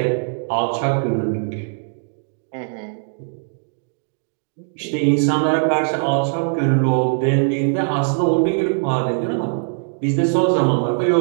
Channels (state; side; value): silent; left; digital silence